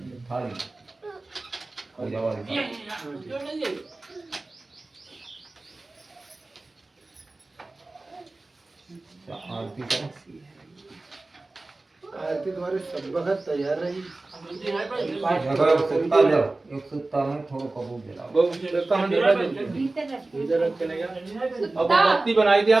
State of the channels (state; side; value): quieter; left; 3.1 dB